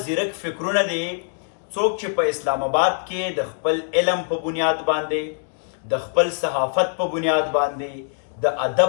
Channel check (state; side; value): silent; right; 63 dB below the other